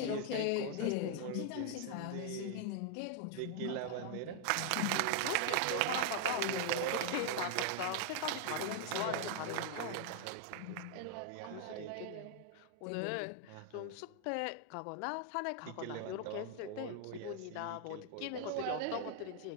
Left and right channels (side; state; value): both; different; correlation 0.00